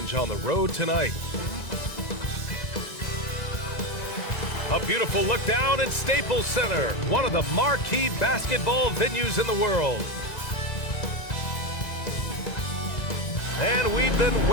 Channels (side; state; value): right; late; 2.0 ms